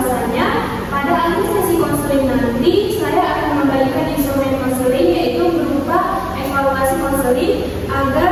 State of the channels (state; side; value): identical; both; correlation 1.00